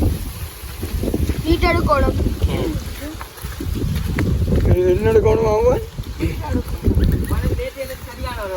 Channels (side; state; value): both; identical; correlation 1.00